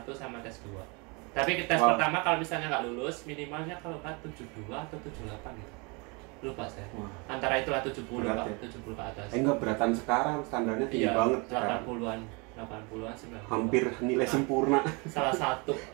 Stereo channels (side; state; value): left; quieter; 30.0 dB